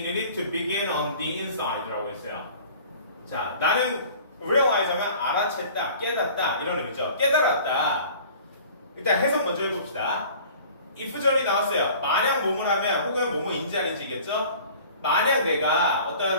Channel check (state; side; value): inverted; both; correlation -0.46